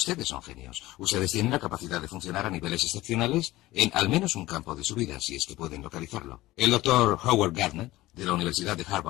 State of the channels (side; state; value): right; quieter; 17.7 dB